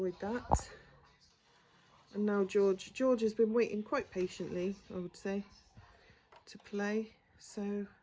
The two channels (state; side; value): identical; both; correlation 1.00